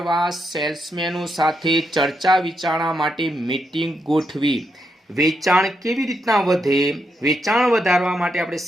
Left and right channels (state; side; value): normal; both; correlation 0.81